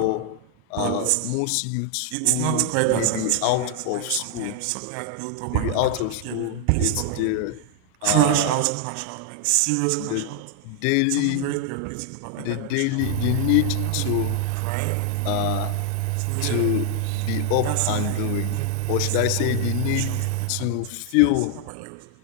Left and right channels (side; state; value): both; different; correlation 0.00